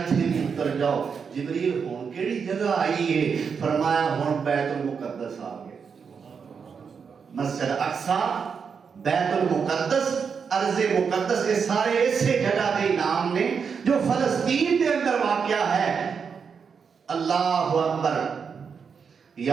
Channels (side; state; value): left; quieter; 6.2 dB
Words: بھی اتر جاؤ جبریل ہون کیڑی جگہ آئی ہے فرمایا ہون بیت المقدس آ گئے مسجد اقصی بیت المقدس ارض مقدس یہ سارے اسے جگہ دے نام نے جو فلسطین دے اندر واقع ہے اللہ اکبر